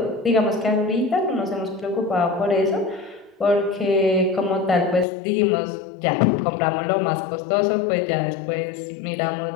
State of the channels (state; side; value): drops out; right; at 5.1 s